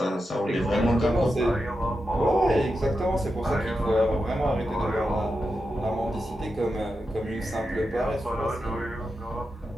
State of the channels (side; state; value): both; normal; correlation 0.88